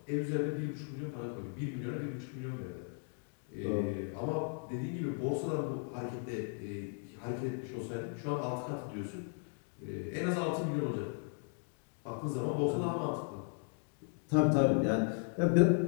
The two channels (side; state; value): right; silent; 54 dB below the other